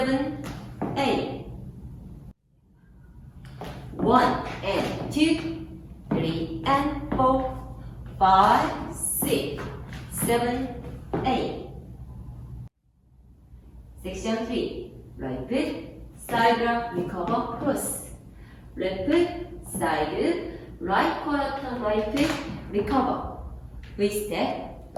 8. 1 and 2, 3 and 4, 5, 6, 7, 8. Section 3. Right foot, side rock, recover, cross. Left foot, side, right quarter turn right foot, recover. We step,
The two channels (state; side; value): identical; both; correlation 1.00